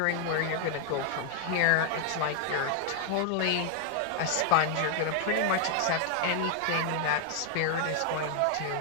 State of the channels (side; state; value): both; different; correlation 0.00